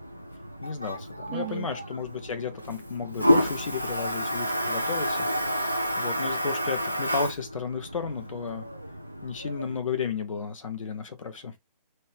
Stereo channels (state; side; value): inverted; both; correlation -0.74